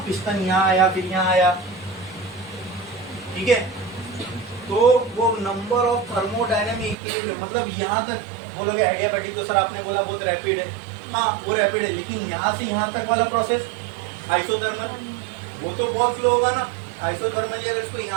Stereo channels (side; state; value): left; drops out; at 7.0 s